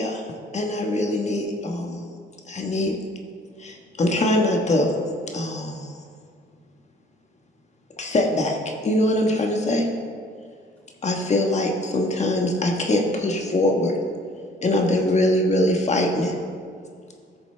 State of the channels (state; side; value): normal; both; correlation 0.55